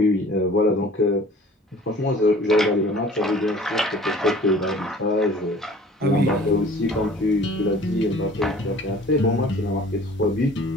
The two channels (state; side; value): normal; both; correlation 0.48